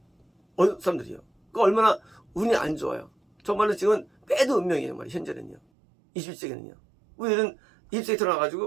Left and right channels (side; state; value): left; drops out; at 5.6 s